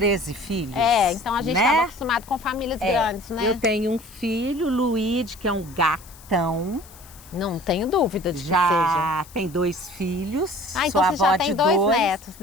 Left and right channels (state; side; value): noise; left; hiss, 22 dB below the sound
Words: filhos. Então a gente estava acostumado com famílias grandes, né? Eu tenho um filho, Luíde, que é um gatão. Não tenho dúvida de que seja. Já tem 2 filhos. Então você já tem 2 netos,